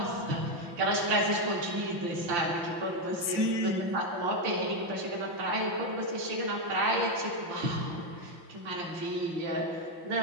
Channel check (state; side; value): late; left; 5.8 ms